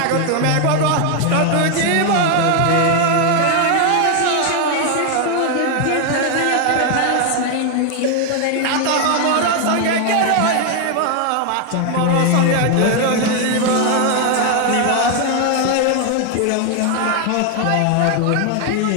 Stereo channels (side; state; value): both; different; correlation 0.01